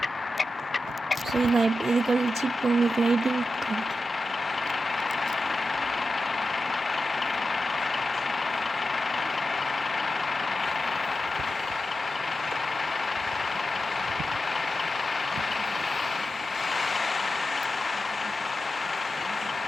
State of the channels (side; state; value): both; normal; correlation 0.91